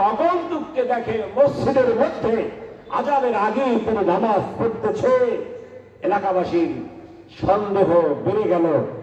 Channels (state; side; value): identical; both; correlation 1.00